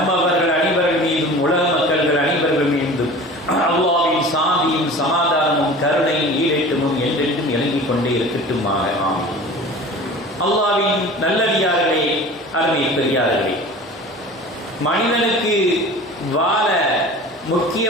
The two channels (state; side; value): normal; both; correlation 0.39